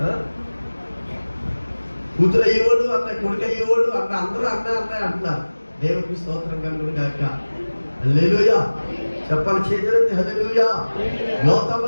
కూతురు అయ్యేవాడు అన్న, కొడుకు అయ్యేవాడు అన్న, అందరూ అన్న అంటున్నారు. దేవునికి స్తోత్రం కలుగును గాక. హల్లెలూయా. చెప్పాలి చేతులెత్తి హల్లెలూయా. యోతాము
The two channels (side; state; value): both; inverted; correlation -1.00